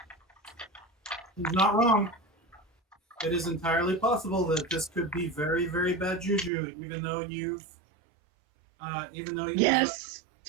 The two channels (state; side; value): drops out; left; at 6.5 s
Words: He's not wrong. It is entirely possible that this could be very, very bad juju, even though you've Yes!